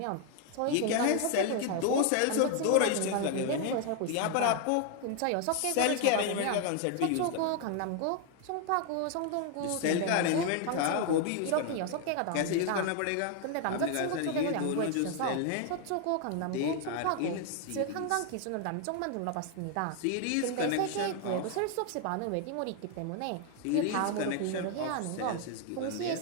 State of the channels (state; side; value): different; both; correlation 0.00